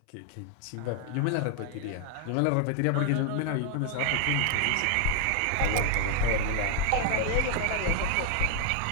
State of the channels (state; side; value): different; both; correlation 0.00